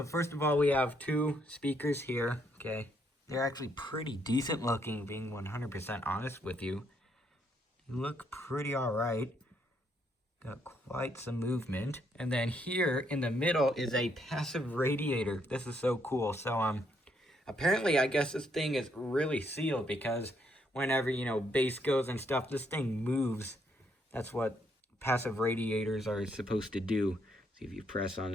first of all, we have two speakers here, okay? They're actually pretty decent looking, being 100% honest with you. They look pretty alright. Got quite some movement. And then here in the middle is a passive radiator. This is so cool. So, apparently I guess this thing is really sealed because whenever, you know, bass goes and stuff, this thing moves. That's what passive radiators are supposed to do. See if you press on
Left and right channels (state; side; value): normal; both; correlation 0.73